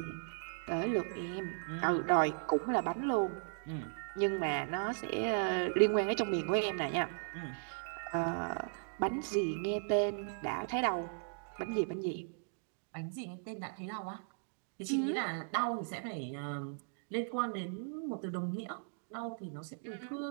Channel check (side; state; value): left; silent; digital silence